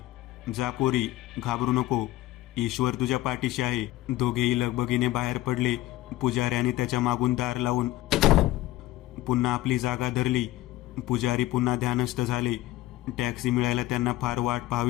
जा पोरी, घाबरू नको. ईश्वर तुझ्या पाठीशी आहे. दोघेही लगबगीने बाहेर पडले. पुजाऱ्याने त्याच्या मागून दार लावून पुन्हा आपली जागा धरली. पुजारी पुन्हा ध्यानस्थ झाले. टॅक्सी मिळायला त्यांना फार वाट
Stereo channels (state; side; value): quieter; right; 16.5 dB